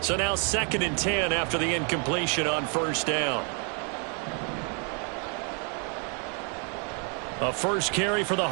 So now 2nd and 10 after the incompletion on 1st down. A first carry for the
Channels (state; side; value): quieter; left; 38.8 dB